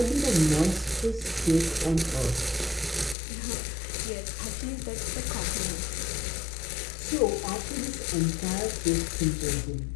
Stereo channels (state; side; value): drops out; right; at 3.2 s